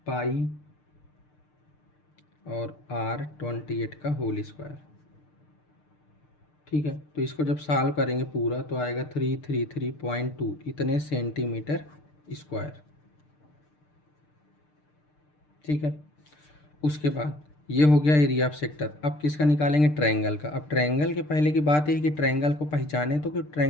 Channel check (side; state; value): right; late; 6.7 ms